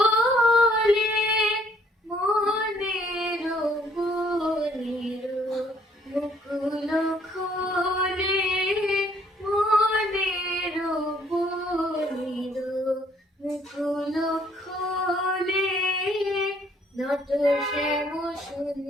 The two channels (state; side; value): normal; both; correlation 0.64